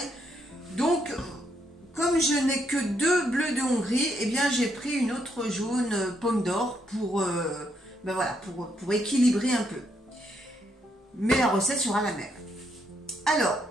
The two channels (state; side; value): normal; both; correlation 0.75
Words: Donc comme je n'ai que deux bleus de Hongrie, eh bien j'ai pris une autre jaune pomme d'or pour, pour équilibrer un peu. Mais la recette sera la même. Alors,